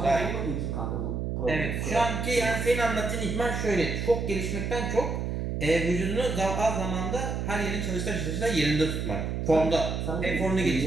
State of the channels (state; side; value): noise; right; hum, 2 dB below the sound